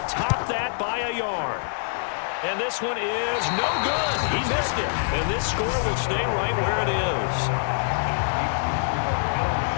top that by a yard. And this one is no good. He missed it. And this score will stay right where it is.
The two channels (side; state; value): right; silent; 62 dB below the other